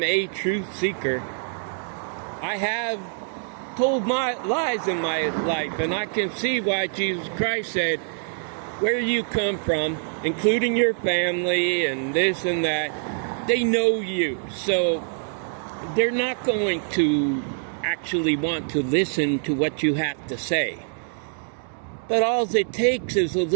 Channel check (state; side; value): silent; left; 61 dB below the other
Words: a truth seeker, I have told my lies in my life, and I can see why Jesus Christ said, where you come from, including your family and this and that, they know you. So they're not going to actually want to listen to what you have to say. But all it takes is a